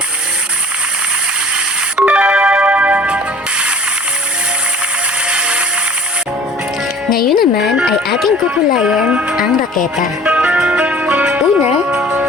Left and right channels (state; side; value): normal; both; correlation 0.47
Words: Ngayon naman ay ating kukulayan ang raketa. Una